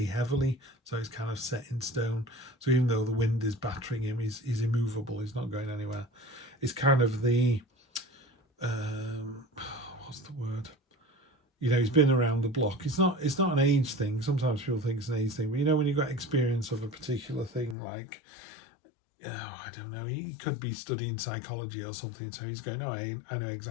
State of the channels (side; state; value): right; drops out; at 17.8 s